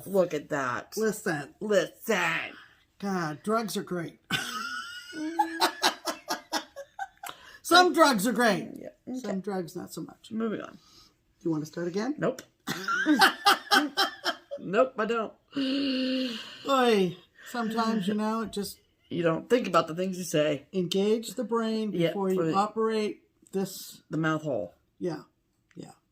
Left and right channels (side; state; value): both; identical; correlation 1.00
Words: Look at that. Listen. God, drugs are great. Some drugs are great. Yeah, okay. Some drugs, not so much. Moving on. You want to start again? Nope. Nope, I don't. Oy, sometimes, it just... You don't think about the things you say. Engage the brain before you operate this... The mouth hole. Yeah.